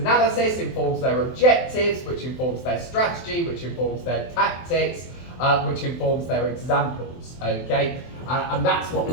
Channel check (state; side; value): late; right; 23 ms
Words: informs their objectives, which informs their strategy, which informs their tactics, which informs their examples, okay? And that's what